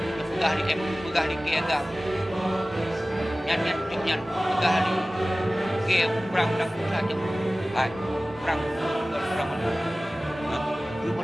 pegah di MOU, pegah di KAGAM. Nyan pegah di ke perang dan saja. Hai, perang mana? Itu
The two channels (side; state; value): both; normal; correlation 0.97